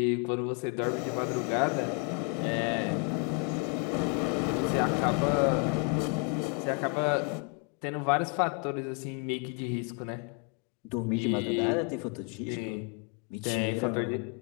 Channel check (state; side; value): quieter; right; 30.8 dB